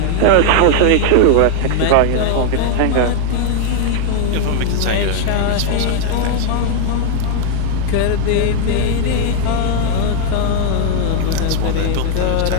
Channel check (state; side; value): different; both; correlation 0.00